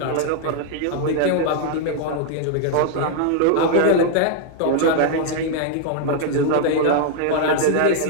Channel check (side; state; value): both; different; correlation 0.00